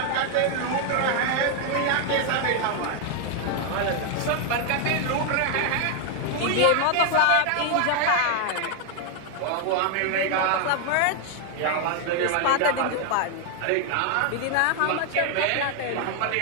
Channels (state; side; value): different; both; correlation 0.00